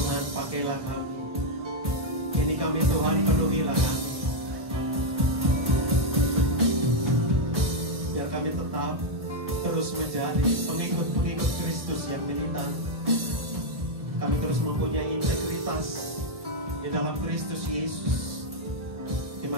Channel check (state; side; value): late; left; 1.1 ms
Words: pakailah kami. Ini kami Tuhan, penuhilah kami. Biar kami tetap terus menjadi pengikut-pengikut Kristus yang militan. Kami terus mempunyai integritas di dalam Kristus Yesus.